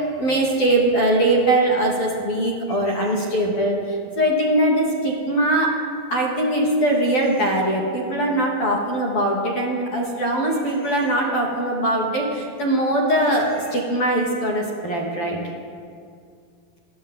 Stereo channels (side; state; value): right; late; 12 ms